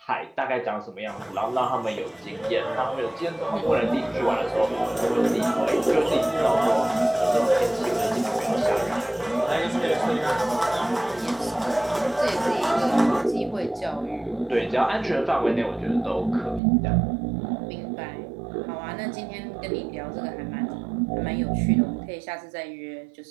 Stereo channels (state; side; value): drops out; left; at 16.6 s